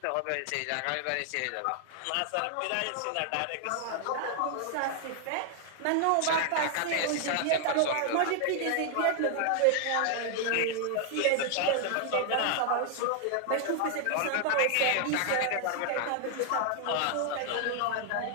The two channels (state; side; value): different; both; correlation 0.00